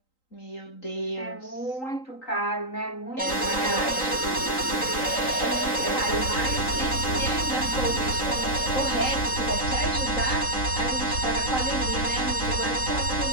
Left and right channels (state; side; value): late; right; 3.9 ms